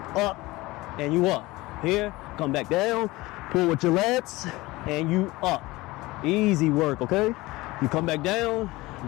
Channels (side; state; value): right; quieter; 20.4 dB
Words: up and you up. Here, come back down, pull with your lats and you up. Easy work, okay? You come back down,